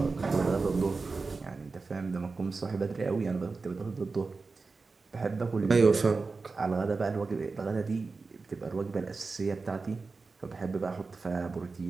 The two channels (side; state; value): left; quieter; 4.1 dB